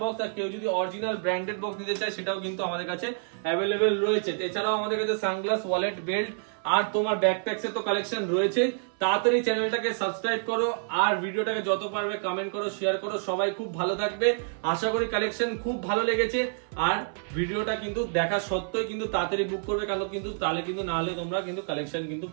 বক্স। আর কেউ যদি অরিজিনাল ব্র্যান্ডেড বক্স নিতে চায় সেটাও কিন্তু আমাদের কাছে অ্যাভেলেবেল রয়েছে। এছাড়াও আমাদের কাছে সানগ্লাস, ওয়ালেট, বেল্ট আর তোমার ব্যাকপ্যাকস এর তো কালেকশন রয়েছে। তাড়াতাড়ি চ্যানেলটাকে সাবস্ক্রাইব করো আর ভিডিওটাকে যত পারবে কমেন্ট করো, শেয়ার করো। সবাই খুব ভালো থাকবে, আশা করি কালেকশন খুব ভালো লেগেছে। আর ভিডিওটা কিন্তু দেখা সত্ত্বেও কিন্তু তাড়াতাড়ি বুক করবে, কারণ কিন্তু তাহলে কিন্তু না হলে তোমরা কিন্তু কালেকশন কিন্তু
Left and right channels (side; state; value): left; silent; 59 dB below the other